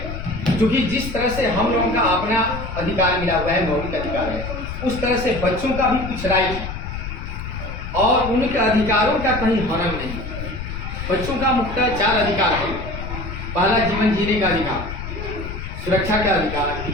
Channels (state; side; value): noise; left; rumble, 7 dB below the sound